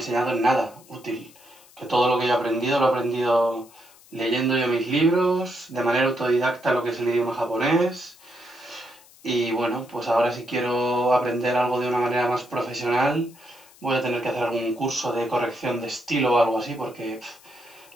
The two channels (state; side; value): noise; left; hiss, 25 dB below the sound